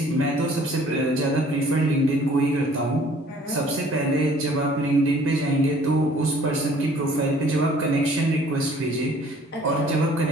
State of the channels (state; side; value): normal; both; correlation 0.55